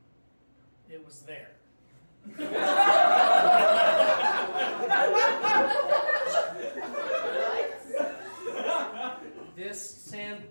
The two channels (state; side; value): inverted; both; correlation -1.00